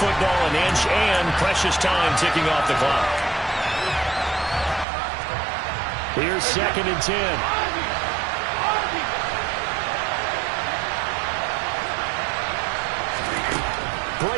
football an inch, and precious time ticking off the clock. Here's 2nd and 10.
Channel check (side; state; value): left; drops out; at 4.9 s